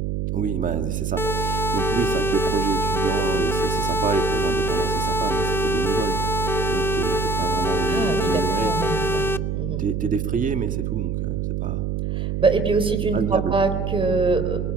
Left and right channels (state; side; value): noise; right; hum, 1 dB below the sound